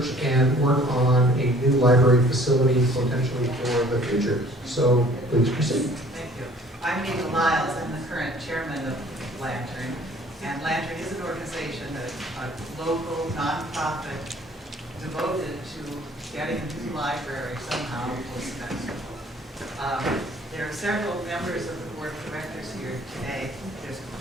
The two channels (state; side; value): normal; both; correlation 0.54